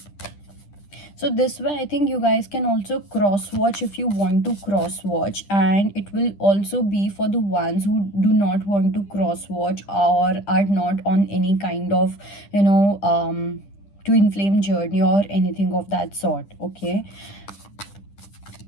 So this way I think you guys can also cross watch if you want to cross watch, and it will also be for the ones who do not want to cross watch or are not on any kind of twin flame journey or anything of that sort. Okay,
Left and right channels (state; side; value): late; right; 10 ms